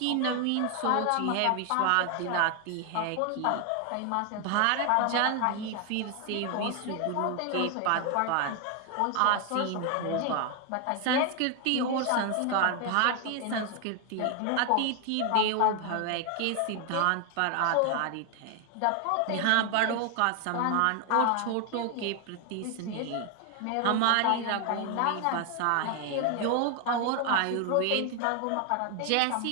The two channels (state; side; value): different; both; correlation 0.01